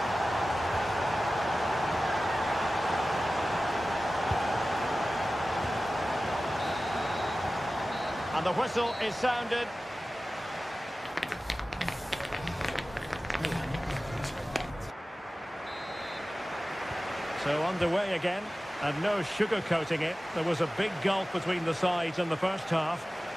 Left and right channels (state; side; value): normal; both; correlation 0.96